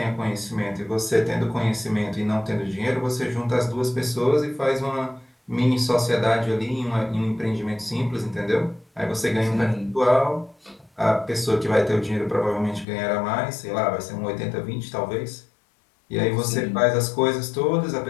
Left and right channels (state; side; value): drops out; right; at 12.9 s